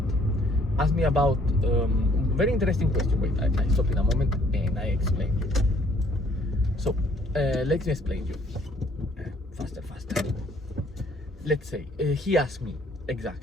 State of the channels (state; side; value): normal; both; correlation 0.61